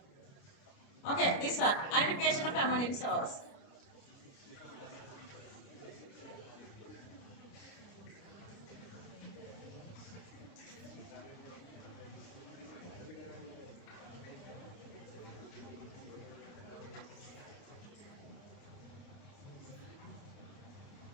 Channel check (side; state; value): right; late; 29 ms